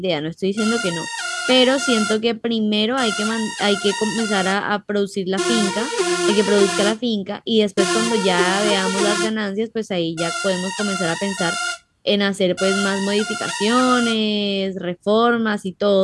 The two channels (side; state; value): both; identical; correlation 1.00